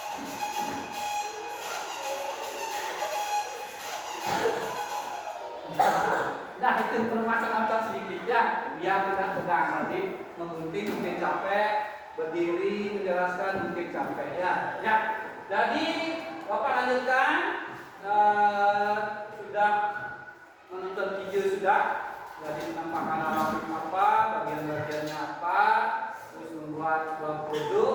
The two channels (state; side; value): identical; both; correlation 1.00